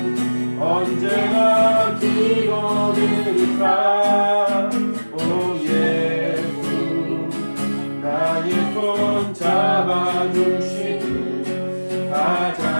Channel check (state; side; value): inverted; both; correlation -1.00